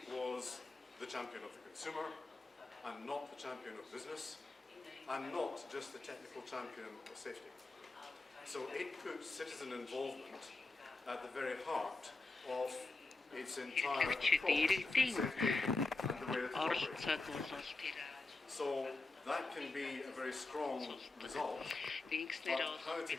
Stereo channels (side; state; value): right; quieter; 3.4 dB